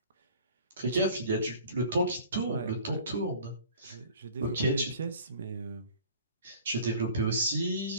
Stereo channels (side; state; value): both; inverted; correlation -0.48